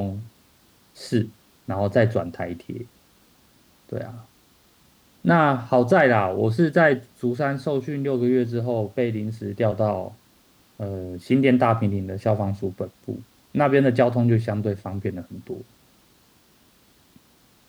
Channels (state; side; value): identical; both; correlation 1.00